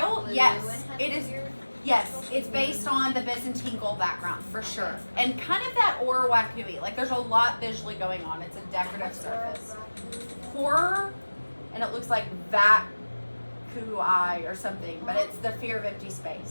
blue Yes, and has it is. weird- Yes, it's based on the Byzantine gold background for sure, and kind of that Orawakui. Like there's a lot visually going on. It's a decorative surface. Horror, and it looks like Vakui or something, but it's the fear of empty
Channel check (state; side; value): inverted; both; correlation -1.00